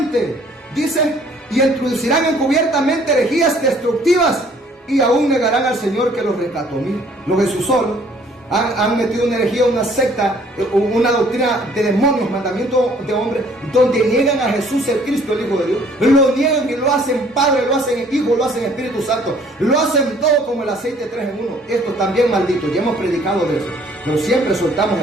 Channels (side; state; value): both; normal; correlation 0.59